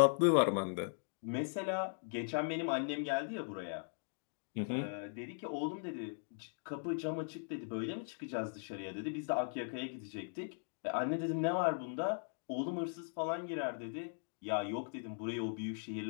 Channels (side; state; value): right; silent; digital silence